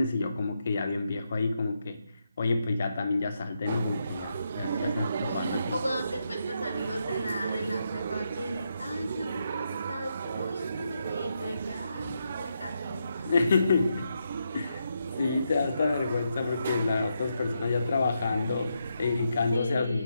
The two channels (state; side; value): inverted; both; correlation -0.82